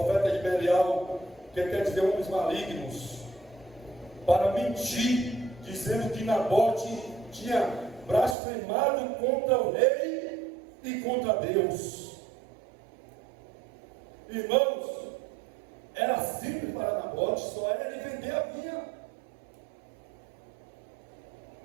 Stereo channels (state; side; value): drops out; left; at 8.3 s